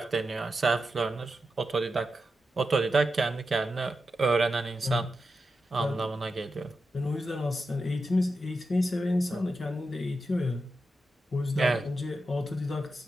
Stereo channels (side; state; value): both; normal; correlation 0.89